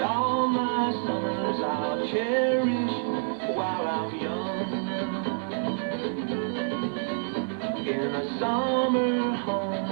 all my summers I'll cherish while I'm young. In a summer home,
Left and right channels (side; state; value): left; silent; digital silence